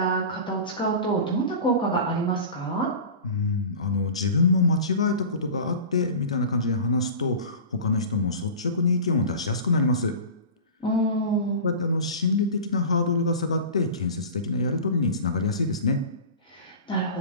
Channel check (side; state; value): both; inverted; correlation -0.34